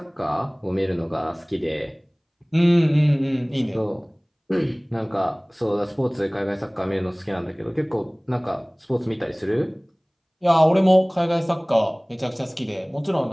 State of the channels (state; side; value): identical; both; correlation 1.00